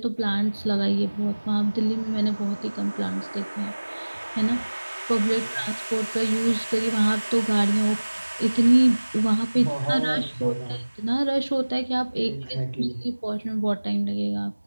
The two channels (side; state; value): both; inverted; correlation -1.00